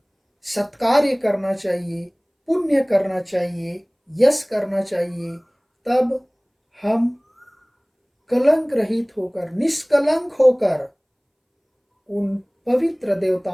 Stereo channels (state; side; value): identical; both; correlation 1.00